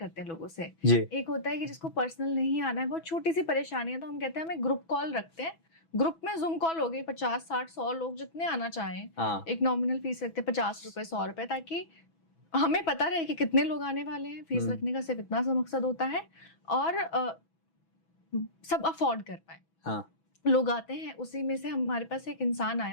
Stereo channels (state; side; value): late; right; 6.1 ms